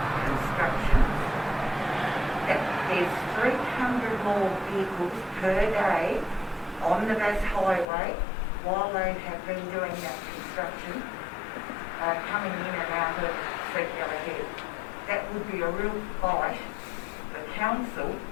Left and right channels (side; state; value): right; drops out; at 7.9 s